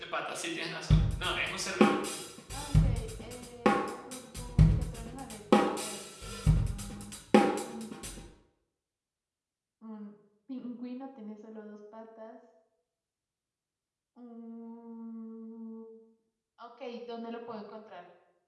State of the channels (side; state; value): both; identical; correlation 1.00